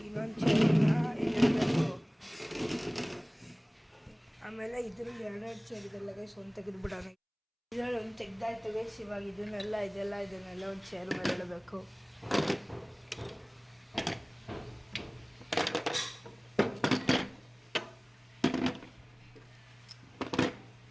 ಇನ್ನೊಂದು ಚೇರನ್ನ ಇಡಬೇಕು. ಆಮೇಲೆ ಇದರಲ್ಲಿ 2 ಚೇರ್ ಇದೆಲ್ಲ ಗೈಸ್, ಒಂದು ತೆಗೆದುಬಿಡೋಣ. ಇದರಲ್ಲಿ ಒಂದು ತೆಗ್ದಾಯ್ತು ಗೈಸ್. ಇವಾಗ ಇದನ್ನೆಲ್ಲ ಒಂದು ಚೇರ್ ಮೇಲೆ ಇಡಬೇಕು.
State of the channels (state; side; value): identical; both; correlation 1.00